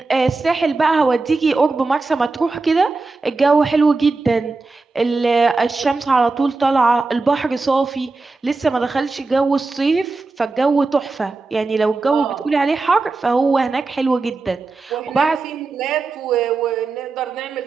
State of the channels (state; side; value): quieter; left; 3.8 dB